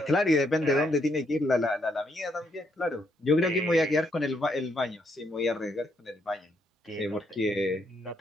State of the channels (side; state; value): both; normal; correlation 0.75